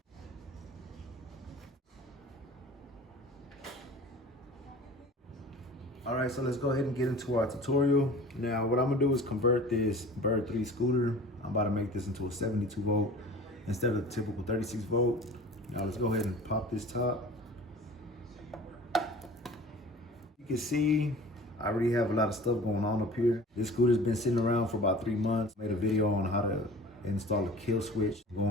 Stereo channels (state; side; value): normal; both; correlation 0.42